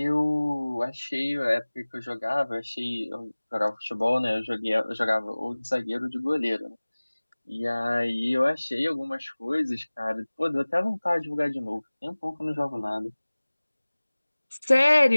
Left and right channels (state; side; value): inverted; both; correlation -1.00